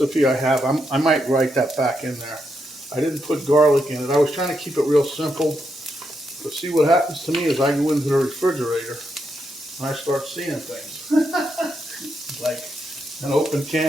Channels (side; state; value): both; normal; correlation 0.81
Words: I have, I might write that back in there. I didn't put garlic in it. I was trying to keep it real simple. But see, what happens to me is I go into the refrigerator and I start seeing things. Like an open